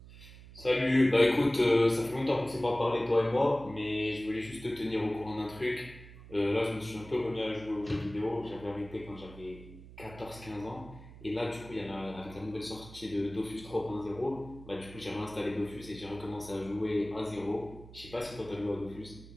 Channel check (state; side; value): noise; right; hum, 17 dB below the sound